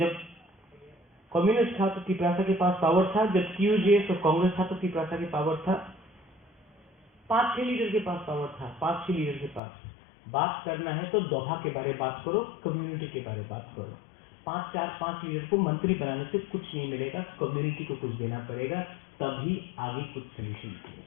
कम्युनिस्ट था तो त्रिपुरा के पास पावर था। जब टीयूजेएस और कांग्रेस था तो त्रिपुरा के पावर था। 5-6 लीडर के पास पावर था। 5-6 लीडर के पास। बात करना है तो दोहा के बारे में बात करो, कम्युनिटी के बारे में बात करो। 5 लीडर को मंत्री बनाने से कुछ नहीं मिलेगा, कम्युनिटी को कुछ देना पड़ेगा, तभी आगे कुछ सोल्यूशन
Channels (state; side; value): drops out; right; at 9.6 s